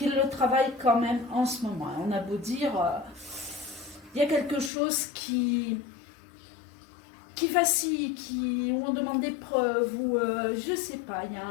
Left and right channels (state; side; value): drops out; right; at 4.7 s